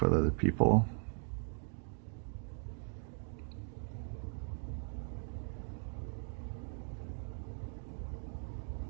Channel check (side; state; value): left; silent; 52 dB below the other